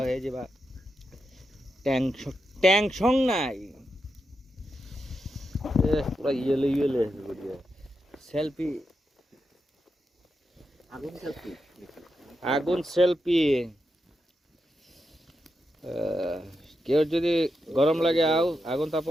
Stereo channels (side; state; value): both; normal; correlation 0.86